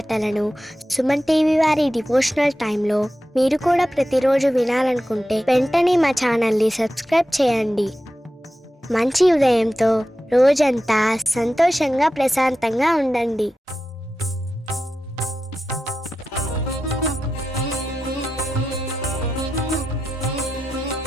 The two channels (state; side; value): normal; both; correlation 0.91